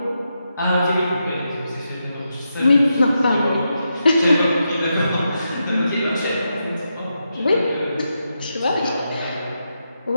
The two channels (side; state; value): both; inverted; correlation -0.85